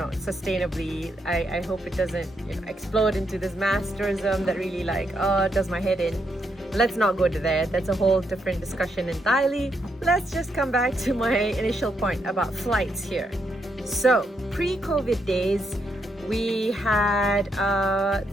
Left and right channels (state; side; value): normal; both; correlation 0.79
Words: sustainably. I hope it doesn't, explode into this mass tourism that really does my head in. Let's not go to there. That's a whole different discussion entirely. Let's just come back to my initial point about flights here. So pre-COVID days, we had